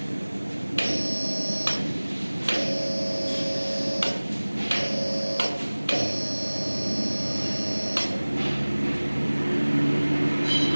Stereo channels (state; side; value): inverted; both; correlation -1.00